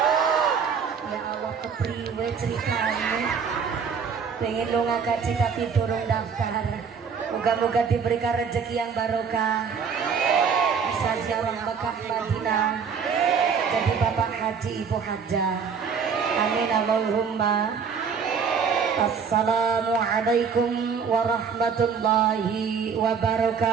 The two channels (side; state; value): left; quieter; 6.3 dB